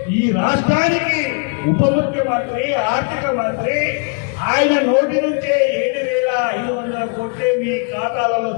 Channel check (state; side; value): quieter; right; 38.1 dB